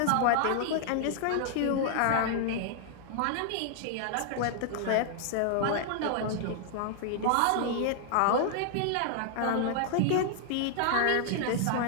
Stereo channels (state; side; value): different; both; correlation 0.00